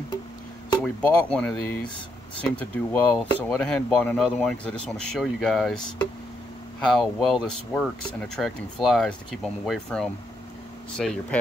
So we bought one of these, seemed to do well. So I went ahead and bought another one because I just want to show you guys how well this works in attracting flies to keep them away from, say, your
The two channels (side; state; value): both; normal; correlation 0.78